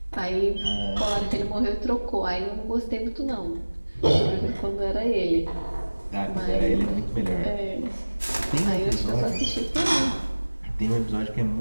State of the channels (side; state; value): both; inverted; correlation -1.00